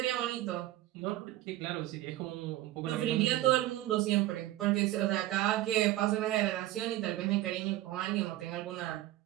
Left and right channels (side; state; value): left; quieter; 15.6 dB